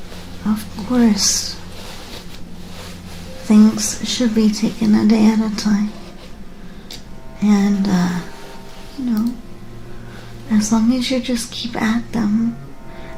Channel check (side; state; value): both; identical; correlation 1.00